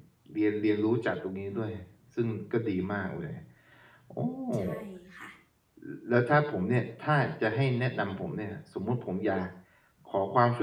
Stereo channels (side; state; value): both; identical; correlation 1.00